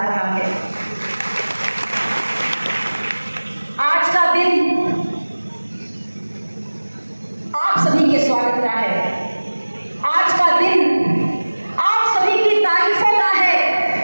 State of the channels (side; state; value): both; inverted; correlation -1.00